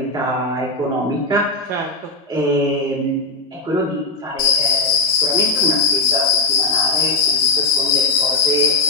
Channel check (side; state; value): right; quieter; 3.4 dB